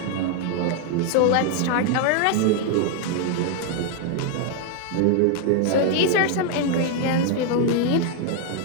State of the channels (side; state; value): both; different; correlation 0.00